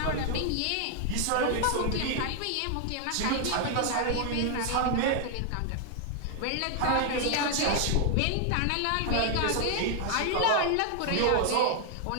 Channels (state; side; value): different; both; correlation 0.00